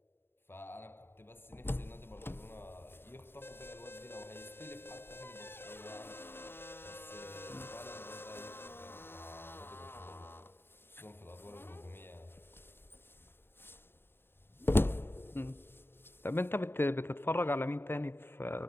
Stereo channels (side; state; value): right; late; 0.11 ms